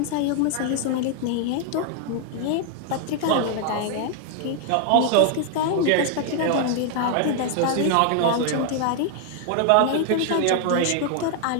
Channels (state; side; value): different; both; correlation 0.00